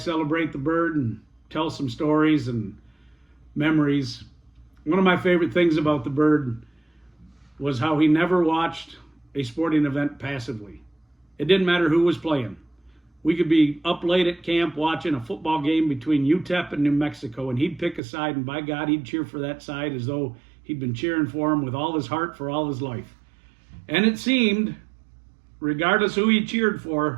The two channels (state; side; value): drops out; left; at 18.0 s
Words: celebrate the bird and tell some stories and memories. One of my favorite things about the bird was how he never watched a sporting event passively. It didn't matter who was playing. We could be up late at camp watching a football game between UTEP and New Mexico, and he'd pick a side, and by God, he'd cheer for that side as though he'd been cheering for him with all his heart for all his life. And it seemed, regardless who he cheered